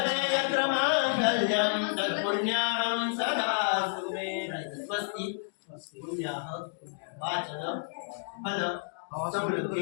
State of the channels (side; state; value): right; silent; digital silence